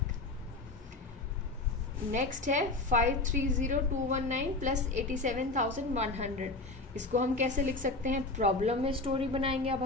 Next है 530,219 प्लस 87,100, इसको हम कैसे लिख सकते हैं, प्रॉब्लम में स्टोरी बनाएंगे। अब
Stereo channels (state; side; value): quieter; right; 3.2 dB